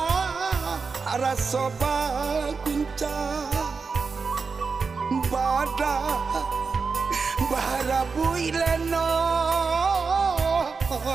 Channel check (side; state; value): left; quieter; 4.9 dB